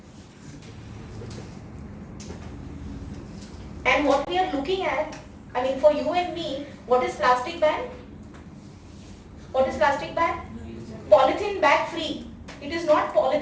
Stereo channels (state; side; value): identical; both; correlation 1.00